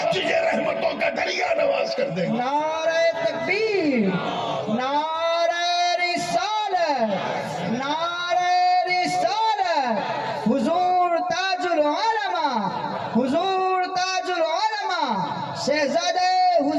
تجھے رحمتوں کا دریا نواز کر دے گا. نعرہ تکبیر، نعرہ رسالت، نعرہ رسالت. حضور تاج العلماء، حضور تاج العلماء، شہزادہ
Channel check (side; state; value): both; identical; correlation 1.00